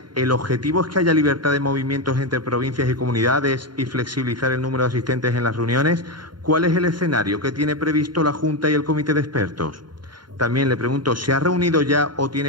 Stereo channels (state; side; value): late; left; 0.71 ms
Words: ¿el objetivo es que haya libertad de movimientos entre provincias y comunidades y flexibilizar el número de asistentes en las reuniones? ¿Cuál es el escenario que tiene previsto la Junta y el Comité de Expertos? También le pregunto, ¿se ha reunido ya o